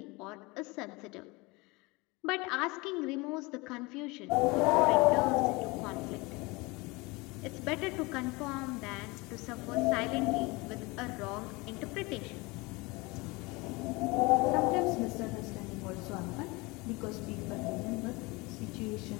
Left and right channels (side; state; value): right; quieter; 24.7 dB